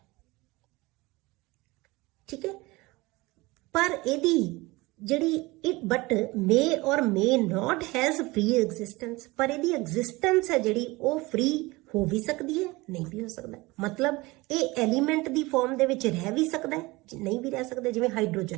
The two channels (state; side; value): quieter; left; 22.2 dB